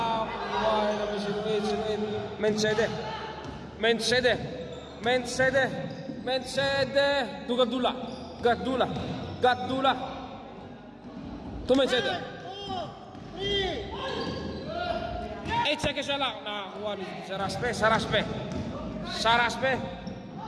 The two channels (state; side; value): identical; both; correlation 1.00